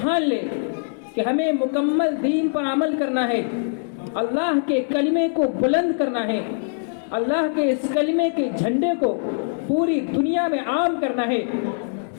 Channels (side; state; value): right; silent; digital silence